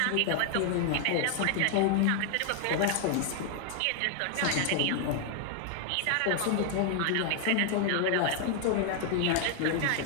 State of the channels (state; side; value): different; both; correlation 0.00